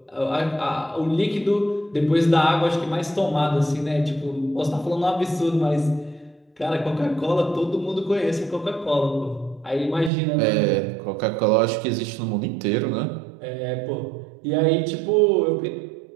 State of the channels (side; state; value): left; drops out; at 10.1 s